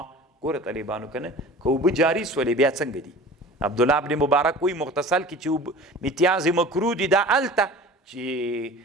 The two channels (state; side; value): normal; both; correlation 0.40